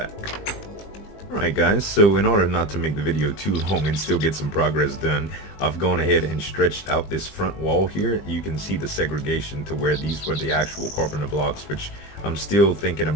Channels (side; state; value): right; late; 20 ms